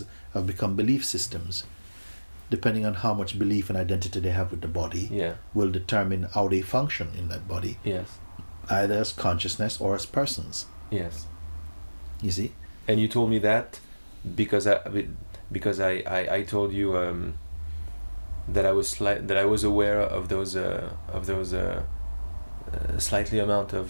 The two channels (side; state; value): both; inverted; correlation -1.00